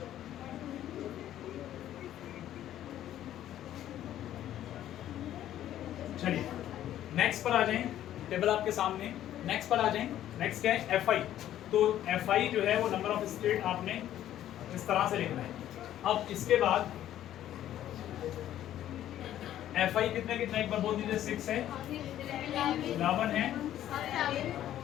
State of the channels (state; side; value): quieter; right; 12.1 dB